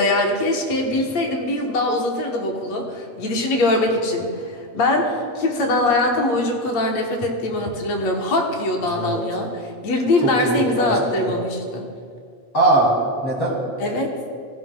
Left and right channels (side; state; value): right; late; 8.5 ms